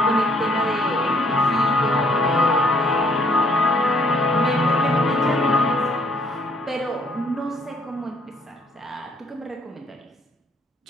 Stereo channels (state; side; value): normal; both; correlation 0.65